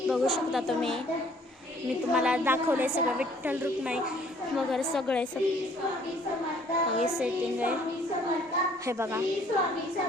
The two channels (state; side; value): normal; both; correlation 0.59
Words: बघू शकता तुम्ही मी तुम्हाला दाखवले सगळं विठ्ठल रुक्माई वगैरे सगळे सेटिंग आहे हे बघा।